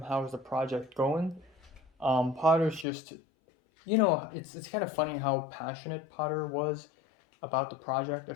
how's the project going. Potter's just, it's kind of funny how passionate Potter was about the project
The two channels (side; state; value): right; drops out; at 2.9 s